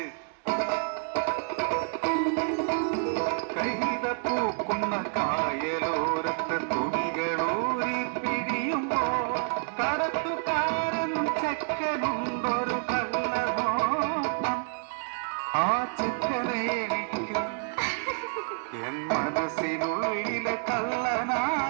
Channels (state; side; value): silent; left; 59 dB below the other